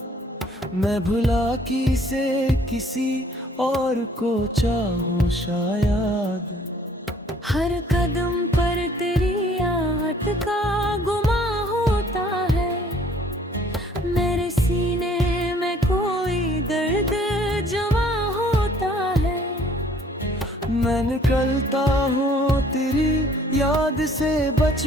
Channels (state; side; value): normal; both; correlation 0.58